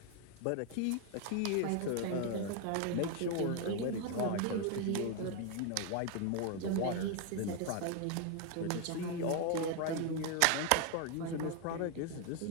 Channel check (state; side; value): different; both; correlation 0.01